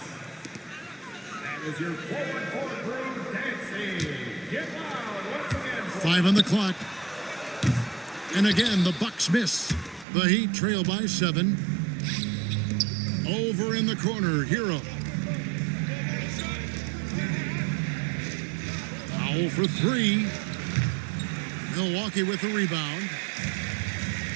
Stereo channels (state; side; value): drops out; left; at 10.1 s